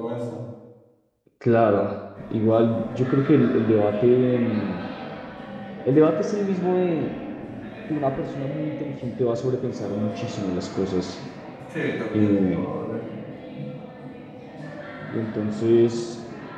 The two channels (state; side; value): identical; both; correlation 1.00